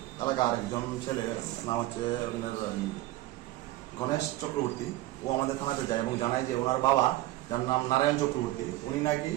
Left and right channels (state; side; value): quieter; left; 16.6 dB